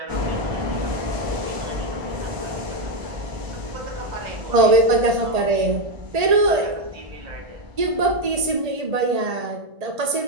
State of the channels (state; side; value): late; left; 1.8 ms